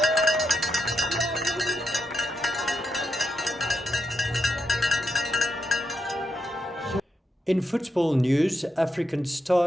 In football news, African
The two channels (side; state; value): both; normal; correlation 0.83